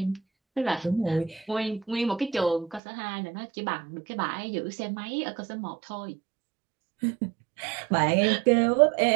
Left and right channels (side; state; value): left; drops out; at 2.8 s